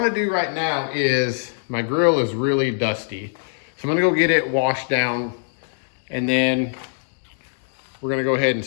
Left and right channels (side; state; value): right; silent; digital silence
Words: do right now is, my grill is really dusty. So I'm gonna go get it washed down, and then we're gonna go ahead and